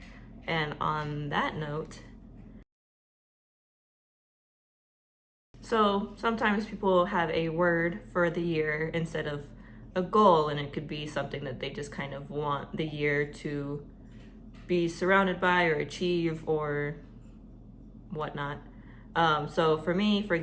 And on that note, so sometimes people have a word for the year instead of a goal, and it could be something that they just kind of want the year to be surrounded by or achieve or whatnot. So for me, for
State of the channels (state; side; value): identical; both; correlation 1.00